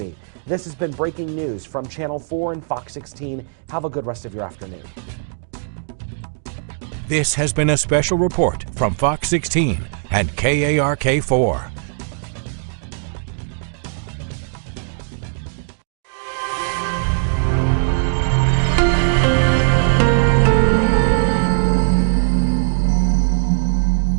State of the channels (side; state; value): left; silent; digital silence